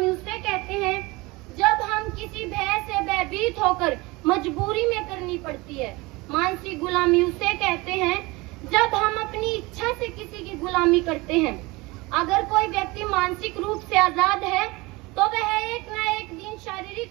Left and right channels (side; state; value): left; quieter; 23.2 dB